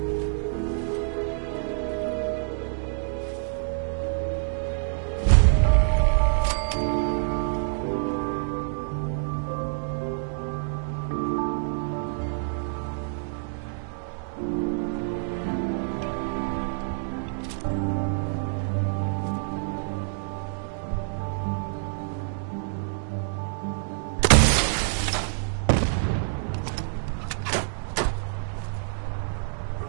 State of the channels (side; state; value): left; silent; 58 dB below the other